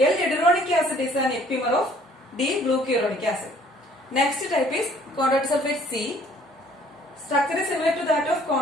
acid is an epimer of D-glucuronic acid. Next type is chondroitin sulfate C. Structure is similar to that of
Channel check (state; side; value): normal; both; correlation 0.58